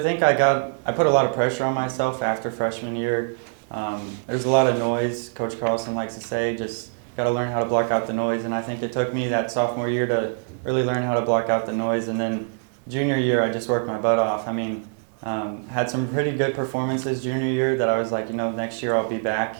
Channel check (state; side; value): silent; left; digital silence